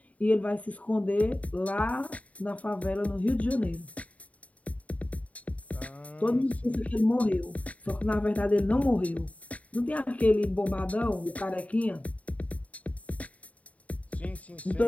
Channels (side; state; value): right; late; 0.068 ms